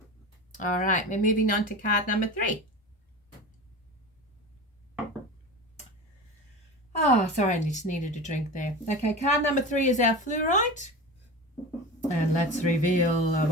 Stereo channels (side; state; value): both; normal; correlation 0.30